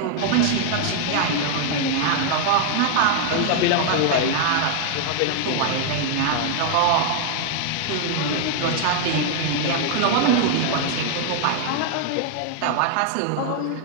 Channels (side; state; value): both; different; correlation 0.00